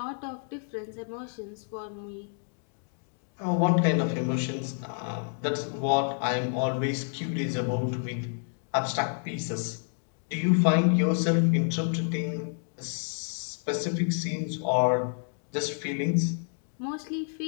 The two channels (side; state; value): right; silent; 56 dB below the other